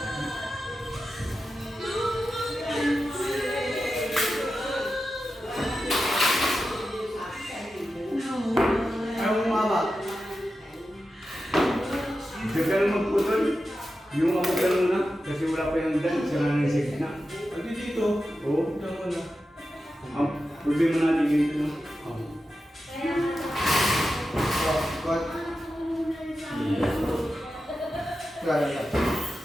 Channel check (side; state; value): both; normal; correlation 0.91